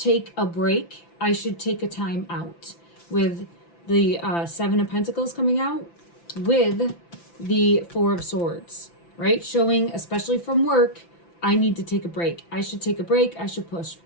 a break. I should take a time out. With the Seven of Pentacles coming out, with the Four of Swords, right? Showing, especially from work, I need to take a break. I should take a break. I should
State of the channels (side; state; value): right; late; 5.9 ms